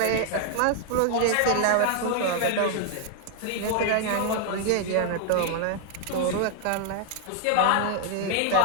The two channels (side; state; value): both; different; correlation 0.00